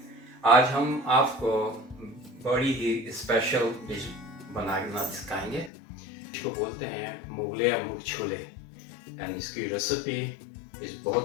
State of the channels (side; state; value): right; drops out; at 5.7 s